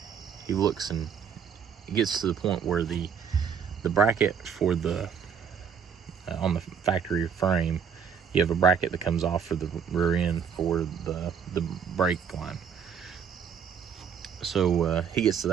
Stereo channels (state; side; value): quieter; left; 7.0 dB